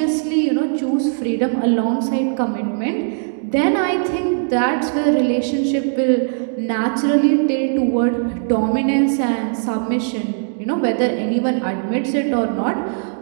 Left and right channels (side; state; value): left; silent; digital silence